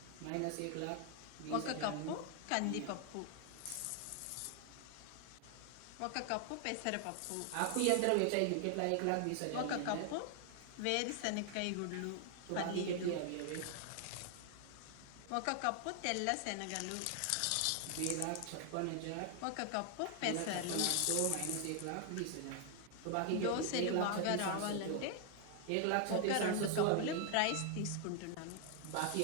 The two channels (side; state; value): both; different; correlation 0.00